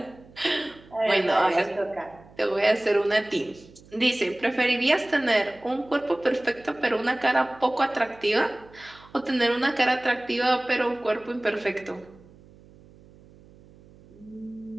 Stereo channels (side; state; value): right; noise; hum, 24 dB below the sound